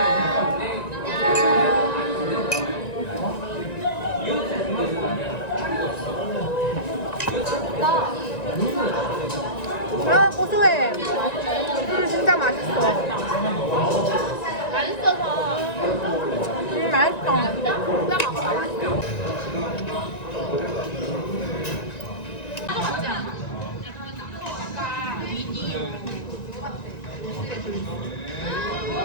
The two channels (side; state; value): right; late; 1.9 ms